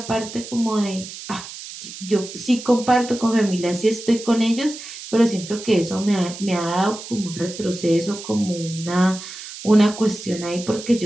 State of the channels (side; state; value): right; noise; hiss, 12 dB below the sound